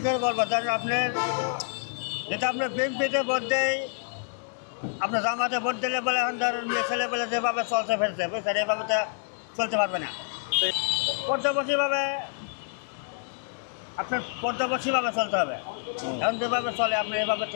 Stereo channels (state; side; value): silent; right; 60 dB below the other